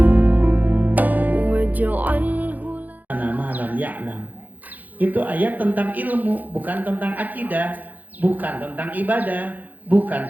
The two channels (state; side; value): late; left; 0.082 ms